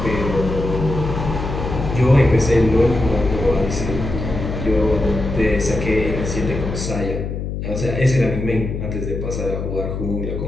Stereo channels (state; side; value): noise; left; hum, 4 dB below the sound